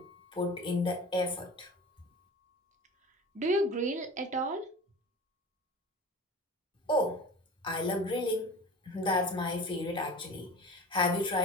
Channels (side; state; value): both; normal; correlation 0.37